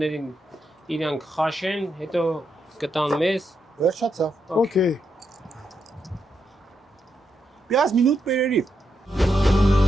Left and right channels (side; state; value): both; normal; correlation 0.82